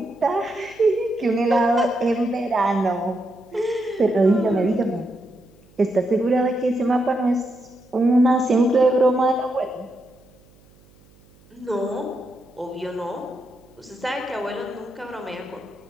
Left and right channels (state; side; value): noise; right; hum, 29 dB below the sound